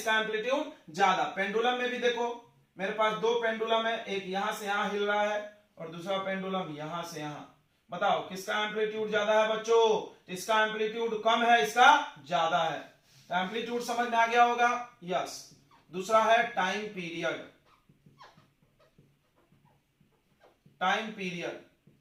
एम्पलीट्यूड ज्यादा। पेंडुलम में भी देखो, मेरे पास 2 पेंडुलम है, एक यहां से यहां हिल रहा है और दूसरा पेंडुलम यहां से यहां। बताओ किसका एम्पलीट्यूड ज्यादा है बच्चों? इसका एम्पलीट्यूड कम है, इसका ज्यादा है। तो एम्पलीट्यूड समझ में आ गया होगा? यस। दूसरा है time period. Time period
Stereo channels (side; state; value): both; identical; correlation 1.00